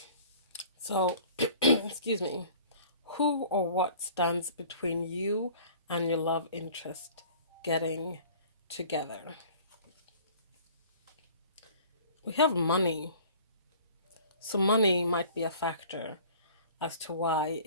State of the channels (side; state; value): both; inverted; correlation -0.48